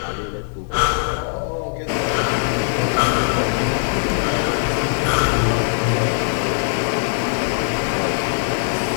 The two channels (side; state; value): right; silent; digital silence